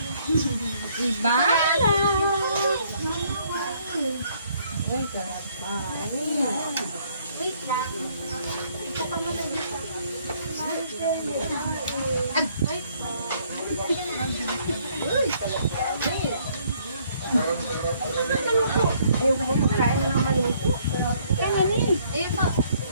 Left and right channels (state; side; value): inverted; both; correlation -0.65